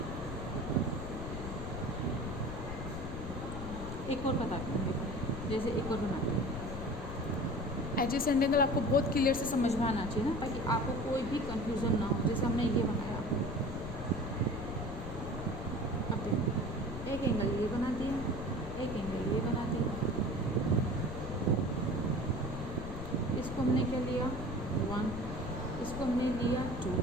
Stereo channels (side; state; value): left; noise; rumble, 7 dB below the sound